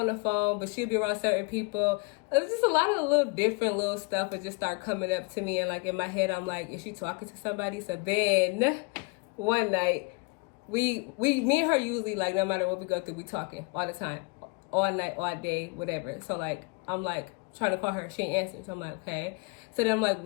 the phone, but she'd be around certain people. It was just a lot of little different little stuff that just start coming up to me, and like in my head I'm like, is she talking to somebody? So then one night me and her usually, like, no matter what we go through, we talking all the time, all night, all day, whatever. So like I'm like trying to call her, she ain't answer. So I'm like, okay. So then I'm like,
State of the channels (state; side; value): quieter; right; 28.2 dB